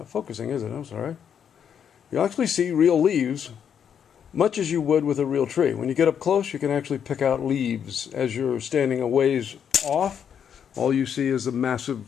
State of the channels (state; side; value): quieter; right; 8.1 dB